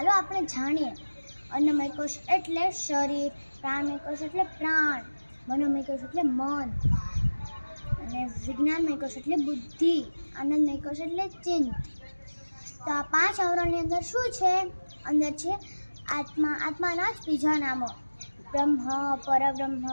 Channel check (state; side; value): inverted; both; correlation -1.00